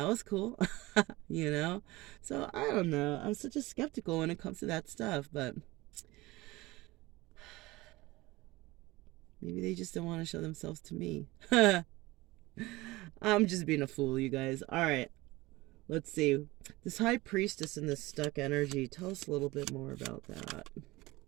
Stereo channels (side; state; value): left; quieter; 20.5 dB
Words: was cool. So I don't know. I'm such a skeptical when it comes to that stuff, but maybe they just don't want to show themselves to me. I'm just being a fool, you guys. All right. Let's see. This high priestess and this stuck energy. Tell us a little bit more about that.